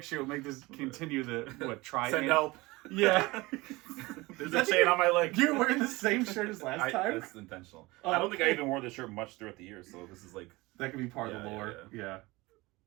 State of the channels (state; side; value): quieter; left; 22.0 dB